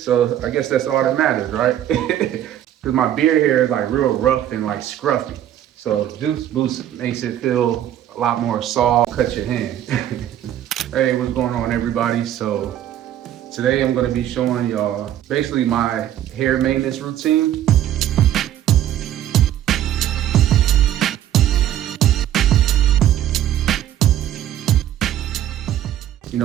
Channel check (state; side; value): quieter; left; 11.6 dB